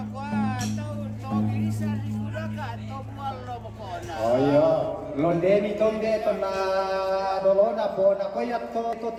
atau birisan di sudah ka atau malo makona. Oh iya, londeni tonde to na dolona po na koyat to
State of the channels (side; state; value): both; identical; correlation 1.00